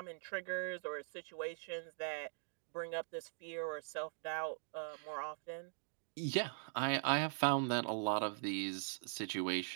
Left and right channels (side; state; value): left; silent; digital silence